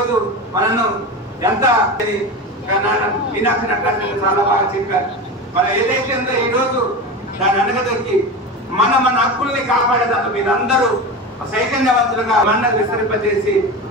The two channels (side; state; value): both; normal; correlation 0.25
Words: మనను ఎంత మీనాక్షి నటరాజన్ చాలా బాగా చెప్పారు. మనం ఏదైతే ఉందో ఈ రోజు దాన్ని అనగదొక్కి మన హక్కుల్ని కాపాడేదాకా మీరందరూ చైతన్యవంతులుగా మండలి విస్తరింపజేసి